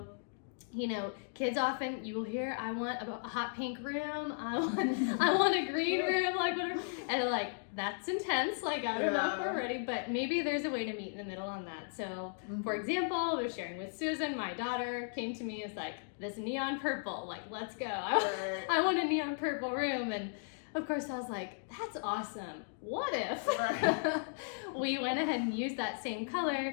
kids often, you will hear, I want a hot pink room, I want a green room, like whatever, and they're like, that's intense, like I don't know if we're ready, but maybe there's a way to meet in the middle on that. So for example, I was sharing with Susan, my daughter came to me, it's like, this neon purple, like, let's go. I want a neon purple room, and of course, I was like, that's awesome. What if Right. we went ahead and used that same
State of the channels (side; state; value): right; silent; digital silence